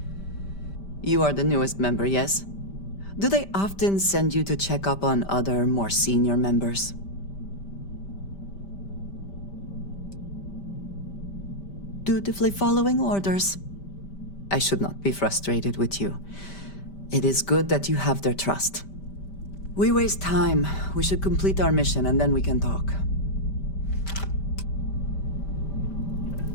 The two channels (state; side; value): late; right; 5.1 ms